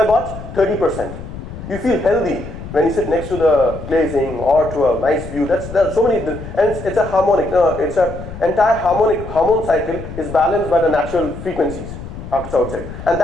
what? 30%. You feel healthy when you sit next to the glazing or to a nice view. There are so many, and it's a harmonic. It's a entire hormone cycle is balanced by the natural frequencies outside, and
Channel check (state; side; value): noise; left; rumble, 11 dB below the sound